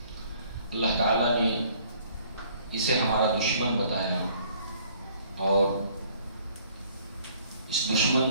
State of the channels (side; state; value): both; inverted; correlation -0.59